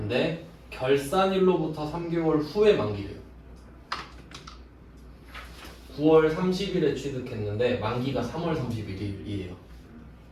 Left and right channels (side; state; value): both; identical; correlation 1.00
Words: 결산일로부터 3개월 후에 만기래요. 9월 30일에 취득했는데 만기가 3월 31일이에요.